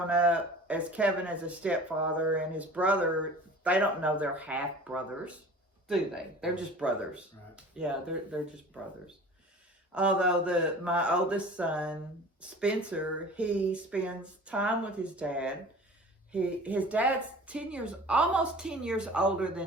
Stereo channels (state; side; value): normal; both; correlation 0.42